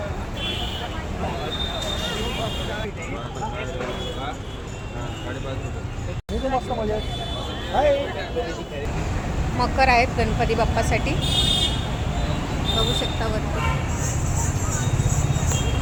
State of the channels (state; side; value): identical; both; correlation 1.00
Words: मकर आहेत गणपती बाप्पासाठी, बघू शकता वरती.